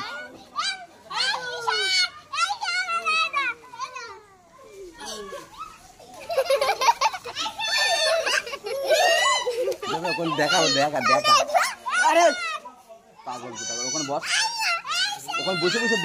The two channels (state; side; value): identical; both; correlation 1.00